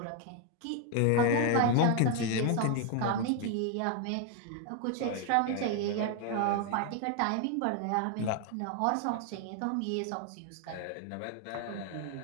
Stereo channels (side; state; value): both; different; correlation 0.01